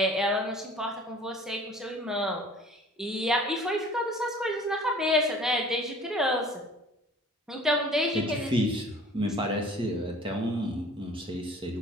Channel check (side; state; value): both; normal; correlation 0.48